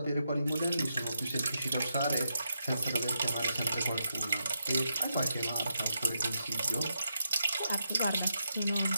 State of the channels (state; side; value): inverted; both; correlation -0.83